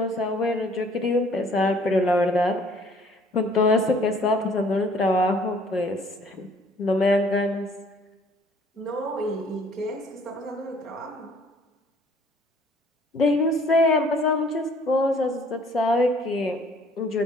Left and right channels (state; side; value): normal; both; correlation 0.57